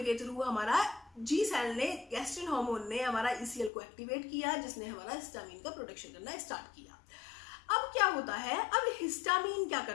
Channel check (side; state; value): right; drops out; at 3.7 s